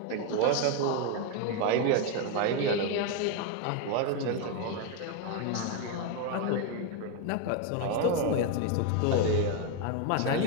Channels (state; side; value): different; both; correlation 0.01